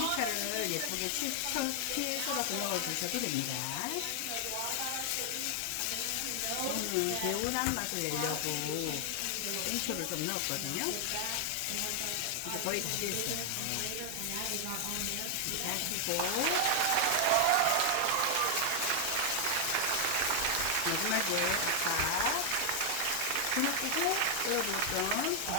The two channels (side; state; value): both; different; correlation 0.00